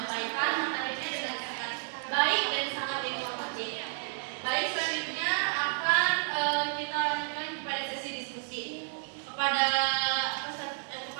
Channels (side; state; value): left; silent; 57 dB below the other